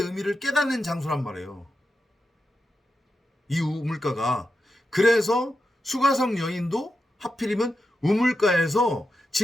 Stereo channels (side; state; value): both; normal; correlation 0.88